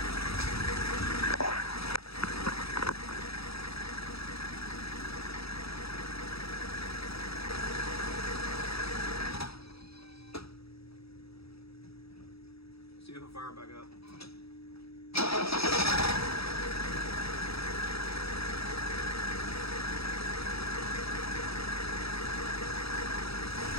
See if it'll fire back up.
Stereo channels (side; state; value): right; late; 0.77 ms